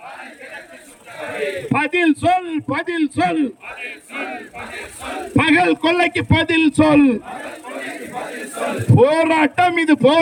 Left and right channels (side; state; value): both; identical; correlation 1.00